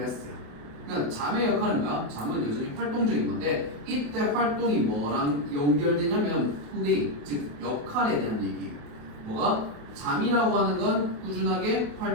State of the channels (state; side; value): late; left; 28 ms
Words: 그러니까 잠의 역할은 뭐야? 잠은 여전히 활동적인 건데 이때 활동이 뭐랑 연결되냐면 플레이, 즉 역할에 대한 얘기예요. 뭐가? 잠이라고 하는 건 꾸준하게